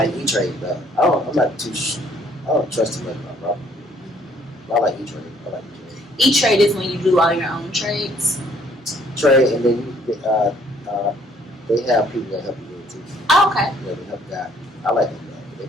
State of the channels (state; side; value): normal; both; correlation 0.62